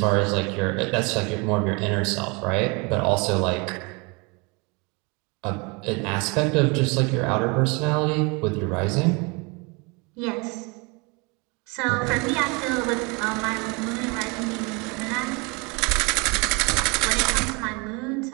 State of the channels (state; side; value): quieter; left; 29.3 dB